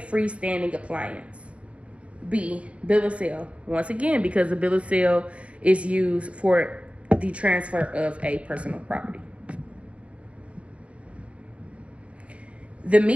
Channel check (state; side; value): late; left; 0.062 ms